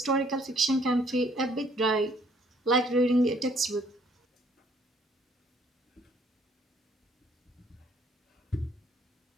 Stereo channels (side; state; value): both; normal; correlation 0.63